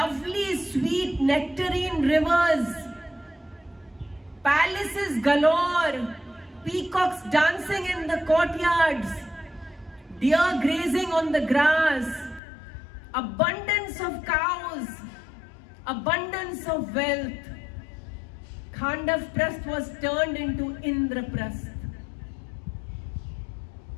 sweet nectarine rivers, palaces galore, peacocks dancing in the courtyards, deer grazing on the grass, abundance of cows, abundance of wealth. Khandavprastha was turned into Indraprastha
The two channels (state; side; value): drops out; right; at 12.4 s